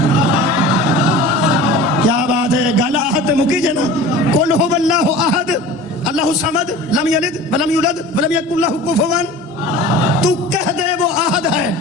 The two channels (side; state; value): both; normal; correlation 0.38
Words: کیا بات ہے گل احد مکی جے نا قل هو اللہ احد اللہ الصمد لم یلد ولم یولد ولم یکن لہ کفوا تو کہہ دے وہ احد ہے